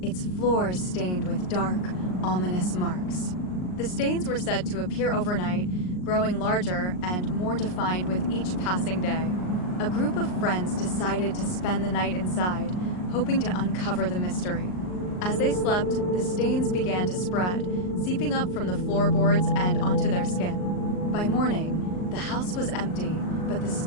its floors stained with dark, ominous marks. The stains were said to appear overnight, growing larger and more defined with each passing day. A group of friends decided to spend the night inside, hoping to uncover the mystery. As they slept, the stains began to spread, seeping up from the floorboards and onto their skin. By morning, the house was empty, but the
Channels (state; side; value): late; right; 39 ms